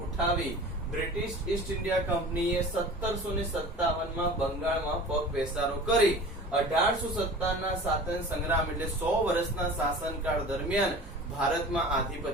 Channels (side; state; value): both; normal; correlation 0.39